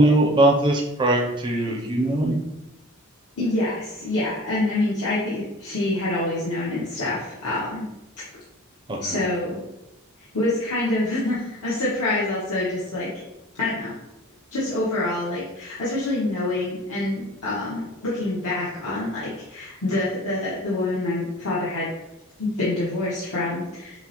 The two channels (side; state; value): both; normal; correlation 0.42